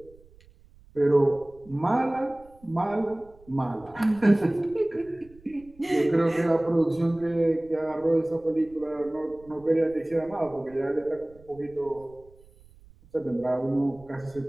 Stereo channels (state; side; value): noise; right; rumble, 26 dB below the sound